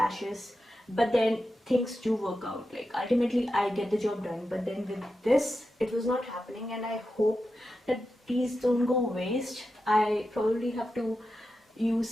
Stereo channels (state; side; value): normal; both; correlation 0.90